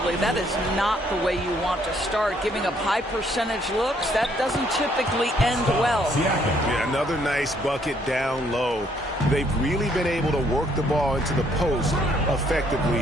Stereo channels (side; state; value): both; normal; correlation 0.67